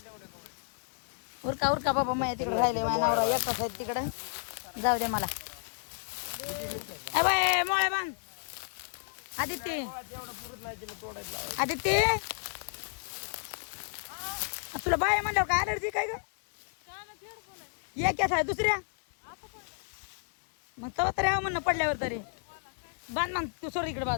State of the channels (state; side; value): silent; right; 57 dB below the other